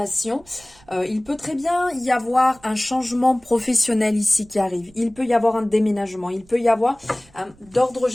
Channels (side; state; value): right; noise; rumble, 28 dB below the sound